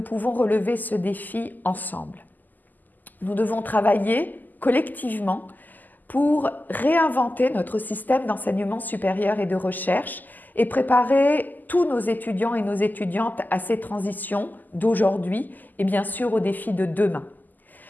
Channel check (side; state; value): right; late; 0.085 ms